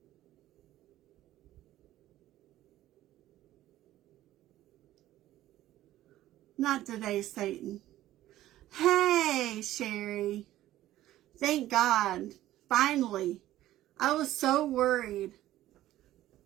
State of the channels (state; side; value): quieter; left; 14.4 dB